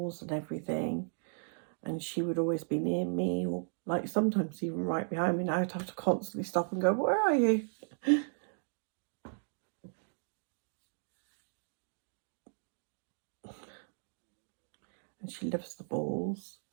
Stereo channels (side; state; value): left; silent; digital silence